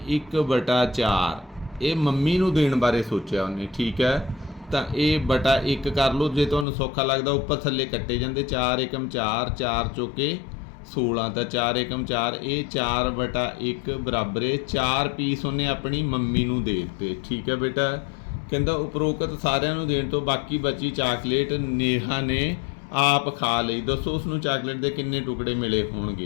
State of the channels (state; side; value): drops out; right; at 6.7 s